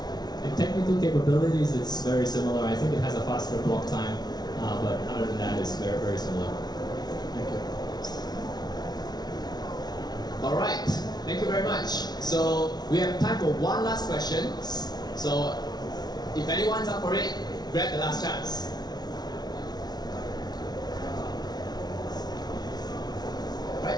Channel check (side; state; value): right; late; 0.19 ms